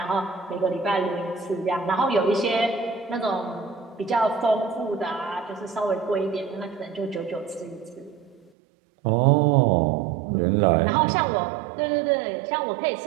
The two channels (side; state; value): left; drops out; at 8.5 s